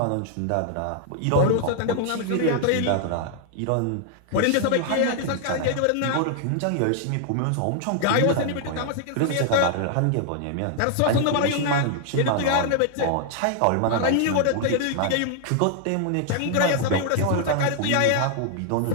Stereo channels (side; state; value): both; different; correlation 0.00